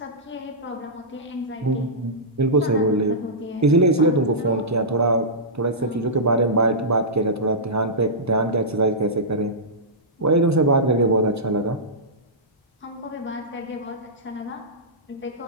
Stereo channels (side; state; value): both; normal; correlation -0.15